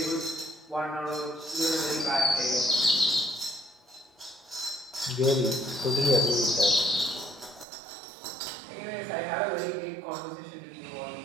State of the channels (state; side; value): drops out; left; at 7.7 s